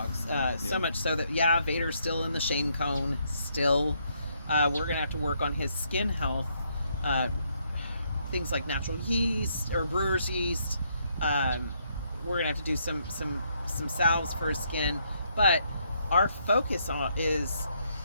So much so that Vader's still in the shame cone still. We're gonna have to work on his skin health, things like natural yeast or brewer's yeast. We're gonna have to do some salves for his skin, but our focus is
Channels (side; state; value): both; inverted; correlation -0.73